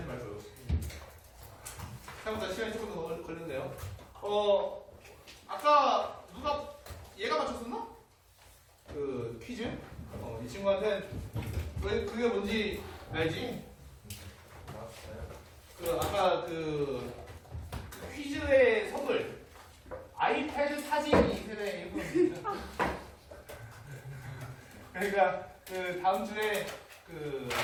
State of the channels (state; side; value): identical; both; correlation 1.00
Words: 말고요. 생각보다 시간이 조금 더 걸렸네요. 아까 누가 얘가 맞췄었나? 퀴즈? 이 친구한테 왜 그게 뭔지 알지? 아까 퀴즈의 선물 아이패드 사진 2세대 일부입니다. 그러니까 다음 주에